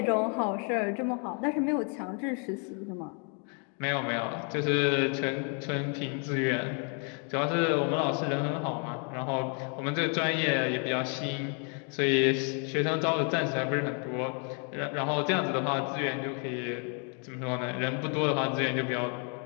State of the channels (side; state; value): right; quieter; 39.3 dB